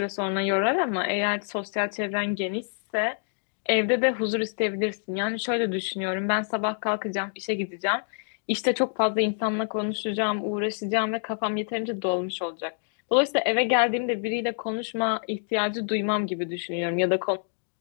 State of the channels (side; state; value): right; silent; digital silence